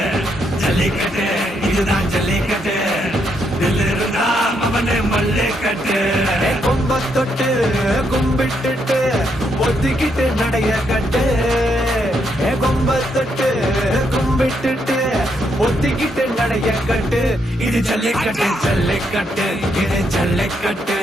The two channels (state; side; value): normal; both; correlation 0.77